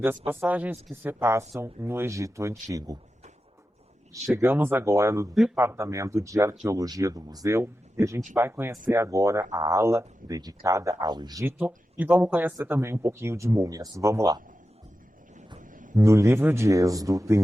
passagens que se passam no Egito Antigo. Chegamos agora no Departamento de Arqueologia do Museu e a gente vai conhecer agora a ala dedicada ao Egito e vamos conhecer também um pouquinho de múmias. Vamos lá! No livro de Êxodo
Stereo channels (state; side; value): normal; both; correlation 0.91